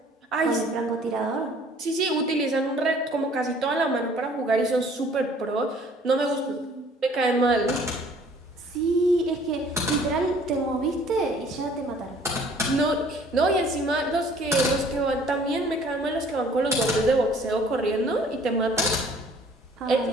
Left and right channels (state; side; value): normal; both; correlation 0.55